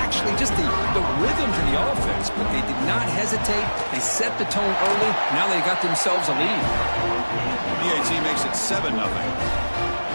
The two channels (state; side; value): inverted; both; correlation -1.00